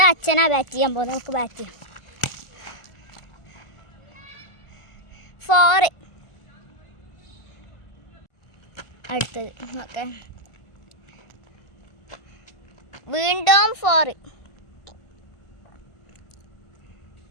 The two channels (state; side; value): late; right; 1.4 ms